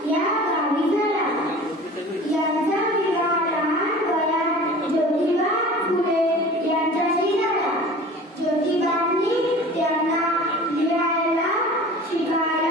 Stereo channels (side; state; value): both; normal; correlation 0.41